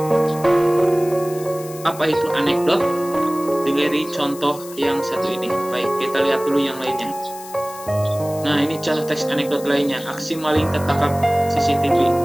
apa itu anekdot dari contoh yang satu ini. Baik, kita lihat dulu yang lainnya. Nah, ini contoh teks anekdot lainnya. Aksi maling tertangkap CCTV.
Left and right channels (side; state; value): left; noise; hiss, 16 dB below the sound